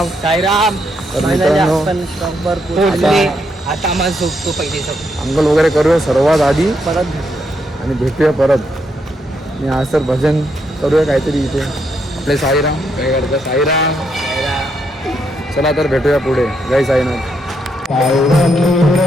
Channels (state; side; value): normal; both; correlation 0.78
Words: साईराम. तर मित्रांनो, आता आम्हाला झोपतो पहिले अंघोळ वगैरे करूया सर्वात आधी आणि भेटूया परत. आणि आज तर भजन करूया काहीतरी इथे. आपले साईराम काय करतात? साईराम. चला तर भेटूया पुढे. जय साईनाथ.